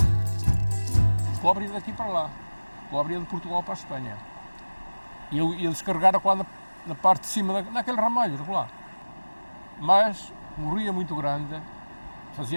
Cobre daqui para lá, cobre de Portugal para a Espanha. E eu ia descarregar na parte de cima, naquele ramalho, lá. Mas morria muito grande,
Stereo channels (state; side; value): inverted; both; correlation -1.00